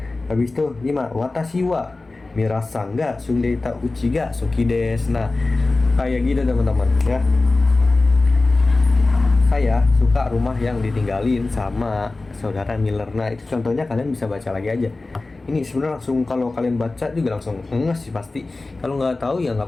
Habis itu 5, watashi wa mirasanga sungdeita uchi ga suki desu. Nah, kayak gitu teman-teman ya. Saya suka rumah yang ditinggalin sama saudara Miller. Nah, itu contohnya, kalian bisa baca lagi aja. Ini sebenarnya langsung, kalau kalian baca juga langsung nges sih pasti. Kalau nggak tahu ya nggak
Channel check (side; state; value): right; quieter; 3.3 dB